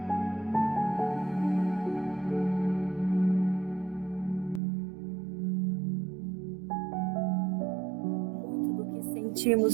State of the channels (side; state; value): left; drops out; at 4.6 s